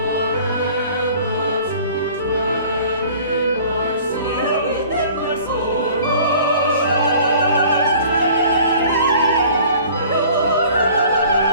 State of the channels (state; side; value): inverted; both; correlation -0.49